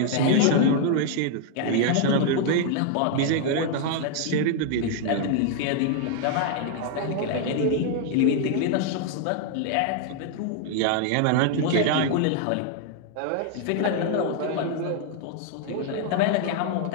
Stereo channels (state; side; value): different; both; correlation 0.00